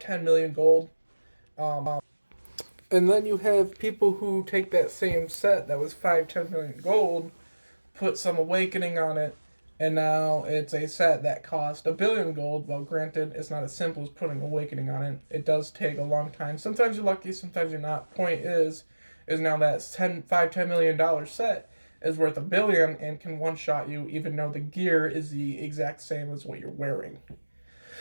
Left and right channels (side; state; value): both; inverted; correlation -1.00